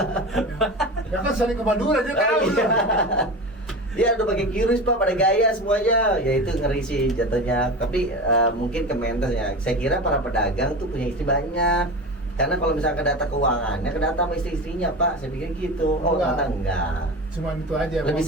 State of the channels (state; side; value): normal; both; correlation 0.28